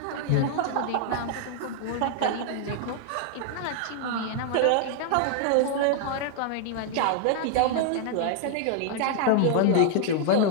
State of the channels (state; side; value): different; both; correlation -0.01